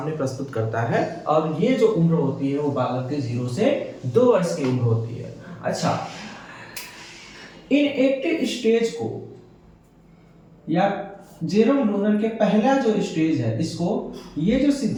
प्रस्तुत करता है। और ये जो उम्र होती है वो बालक के 0 से 2 वर्ष की उम्र होती है। अच्छा, इनएक्टिव स्टेज को या जेरोम लूनर के पहला जो स्टेज है, इसको, ये जो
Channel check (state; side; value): identical; both; correlation 1.00